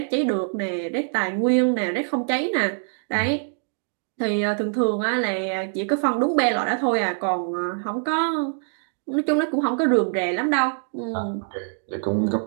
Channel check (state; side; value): silent; left; digital silence